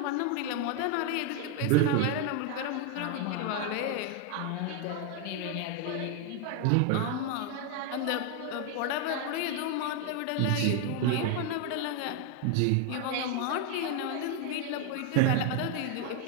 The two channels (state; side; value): different; both; correlation 0.01